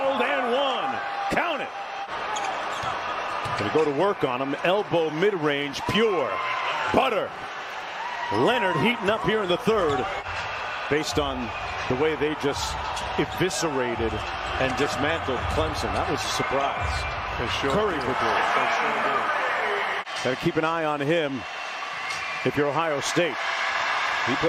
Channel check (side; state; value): both; identical; correlation 1.00